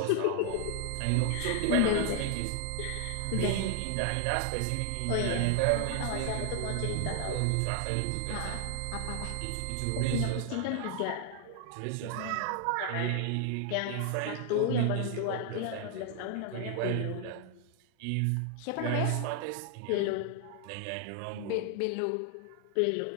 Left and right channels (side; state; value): both; different; correlation 0.00